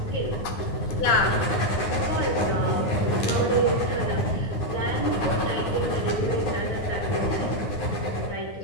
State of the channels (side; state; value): right; late; 9.6 ms